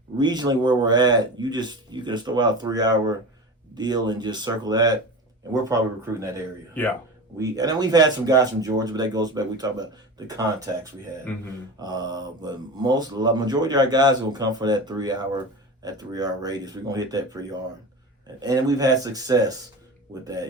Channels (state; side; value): normal; both; correlation 0.30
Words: regionally where we're at. You can throw out a 3-hour deal and just circle that, and we're probably recruiting that area. Yeah. And then we've had some guys from Georgia, but that goes back. We talk about the contacts we had. But majority of our guys will come for that 3-hour radius. We're gonna hit that pretty hard, and we've had success with